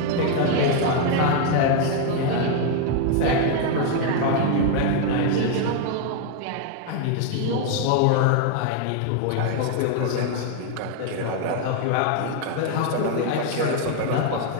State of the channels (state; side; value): different; both; correlation 0.01